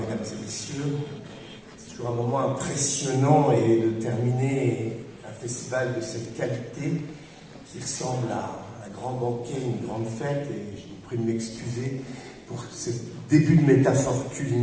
et messieurs. C'est toujours un moment impressionnant et de terminer un festival de cette qualité qui ressemble à un grand banquet, une grande fête, et je vous prie de m'excuser pour ce début de métaphore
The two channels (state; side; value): identical; both; correlation 1.00